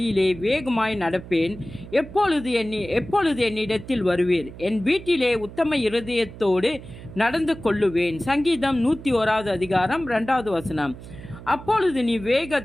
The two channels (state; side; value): noise; right; hum, 15 dB below the sound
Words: வேகமாய் நடப்பேன். எப்பொழுது என்னிடத்தில் வருவீர்? என் வீட்டிலே உத்தம இருதயத்தோடு நடந்து கொள்ளுவேன். சங்கீதம் 101 அதிகாரம் 2 வசனம். அப்பொழுது நீ